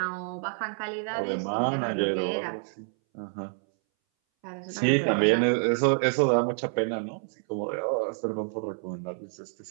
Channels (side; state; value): left; silent; 59 dB below the other